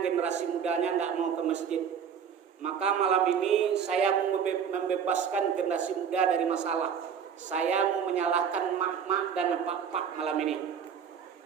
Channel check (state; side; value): quieter; left; 7.5 dB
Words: generasi mudanya tidak mau ke masjid. Maka malam ini saya mau membebaskan generasi muda dari masalah. Saya mau menyalahkan mak-mak dan pak-pak malam ini.